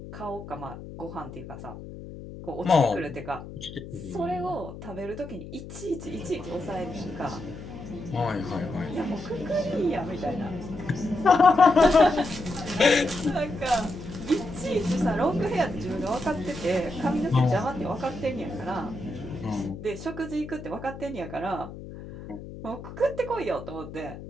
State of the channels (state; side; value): noise; left; hum, 12 dB below the sound